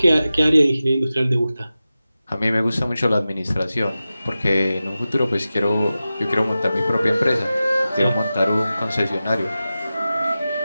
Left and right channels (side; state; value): both; inverted; correlation -0.94